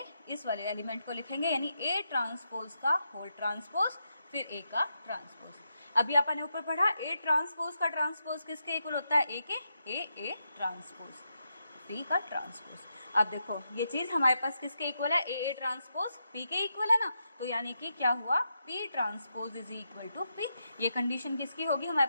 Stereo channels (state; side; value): inverted; both; correlation -0.84